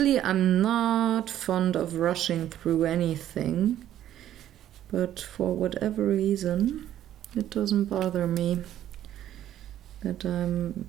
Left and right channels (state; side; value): quieter; left; 11.8 dB